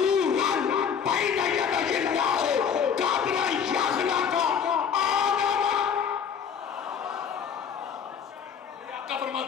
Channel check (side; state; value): right; quieter; 7.4 dB